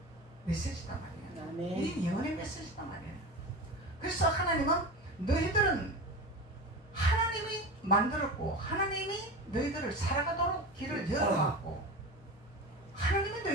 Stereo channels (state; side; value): normal; both; correlation 0.28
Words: 메시지단 말이에요. 아멘. 이 예언의 메시지단 말이에요. 그래서 하나님은 너희들은 하나님이 만들었고 하나님이 너희들을 살아가도록 길을 열어놨고 하나님이